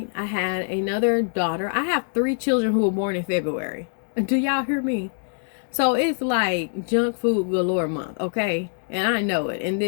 I had another daughter. I have 3 children who were born in February. Do y'all hear me? So it's like junk food galore month, okay? And I know it. And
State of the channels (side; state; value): right; silent; 63 dB below the other